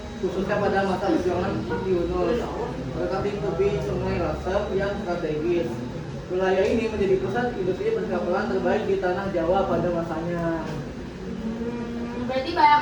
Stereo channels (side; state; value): both; identical; correlation 1.00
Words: khususnya pada masa perjuangan Yunus. Mendekati tepi Sungai Lasem yang strategis. Wilayah ini menjadi pusat industri perkapalan terbaik di tanah Jawa pada masanya. Berarti banyak